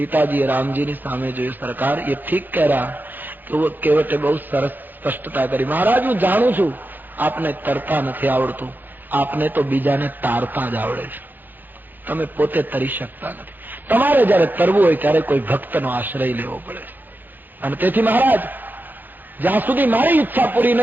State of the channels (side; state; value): left; late; 0.088 ms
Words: રામજીની સામે જોયું, સરકાર એ ઠીક કહ રહ્યા. કેવટે બહુ સરસ સ્પષ્ટતા કરી, મહારાજ હું જાણું છું આપને તરતા નથી આવડતું, આપને તો બીજાને તારતા જ આવડે છે, તમે પોતે તરી શકતા નથી. તમારે જયારે તરવું હોય ત્યારે કોઈ ભક્તનો આશ્રય લેવો પડે છે. અને તેથી મહારાજ જ્યાં સુધી મારી ઈચ્છા પૂરી